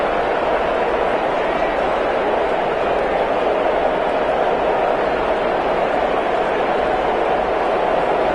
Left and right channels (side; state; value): both; identical; correlation 1.00